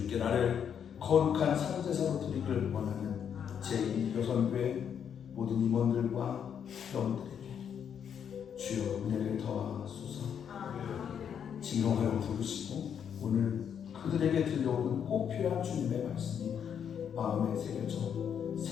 나를 거룩한 상제사로 드리기를 원하는 제2여선교회 모든 임원들과 회원들에게 주여 은혜를 더하소서. 진정하여 부르시고 오늘 그들에게 들려오는 꼭 필요한 주님의 말씀이 마음에 새겨져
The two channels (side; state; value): right; quieter; 8.1 dB